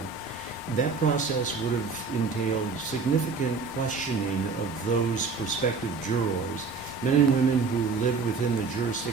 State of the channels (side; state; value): left; quieter; 4.7 dB